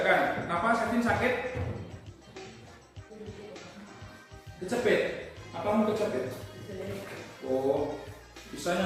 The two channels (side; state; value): both; identical; correlation 1.00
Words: Kenapa sakit? Kecepet. Apa mau kecepet? Oh,